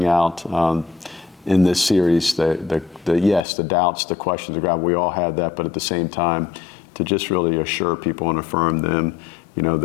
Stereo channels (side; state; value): right; drops out; at 3.5 s